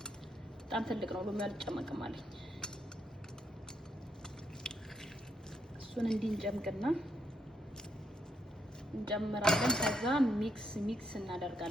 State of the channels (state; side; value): normal; both; correlation 0.77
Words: በጣም ትልቅ ነው ሎሚ አልጨመቅም አለኝ። እሱን እንዲህ እንጨምቅና እንጨምራለን። ከዛ ሚክስ